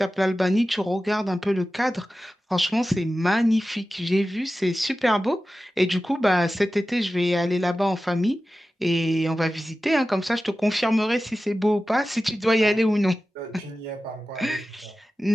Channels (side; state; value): both; normal; correlation 0.94